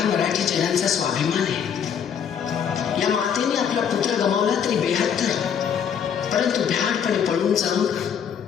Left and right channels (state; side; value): quieter; right; 7.9 dB